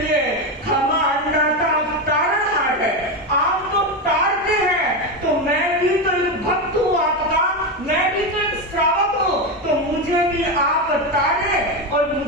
खमा अंडाता तारणहार है, आप तो तारते हैं तो मैं भी तो भक्त हूँ आपका, मैं भी तो एक श्रावक हूँ, तो मुझे भी आप तारे और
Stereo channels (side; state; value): both; normal; correlation 0.13